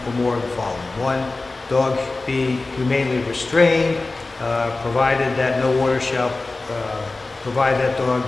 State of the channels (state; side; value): quieter; right; 3.3 dB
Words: or more of the following. One, dog be humanely restrained, provided that no order shall provide that dog